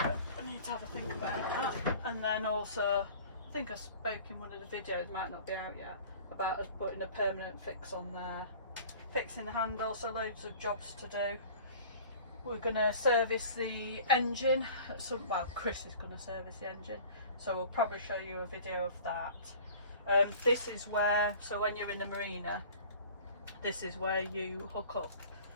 I need to have a think about that. And then also, I think I spoke in one of the videos, might not be out yet, about us putting a permanent fix on there, fixing the handle, so loads of jobs to do. We're going to service the engine, well, Chris is going to service the engine, so we'll probably show you a video of that. This is where, so when you're in the marina, this is where you hook up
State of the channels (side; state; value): both; inverted; correlation -0.45